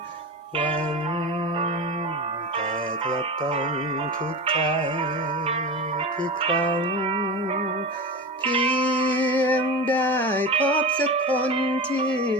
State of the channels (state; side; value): normal; both; correlation 0.26